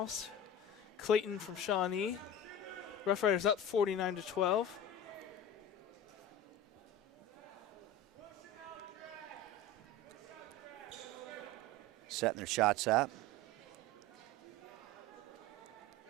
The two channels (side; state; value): both; normal; correlation 0.31